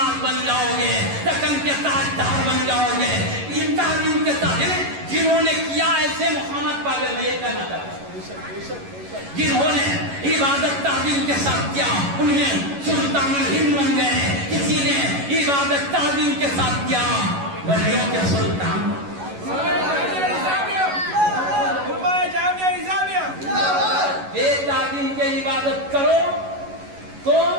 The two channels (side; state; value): left; late; 11 ms